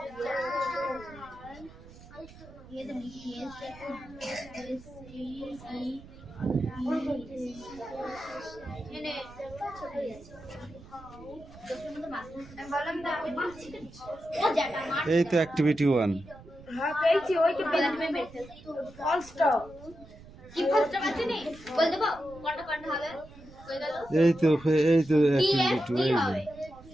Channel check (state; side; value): noise; right; rumble, 19 dB below the sound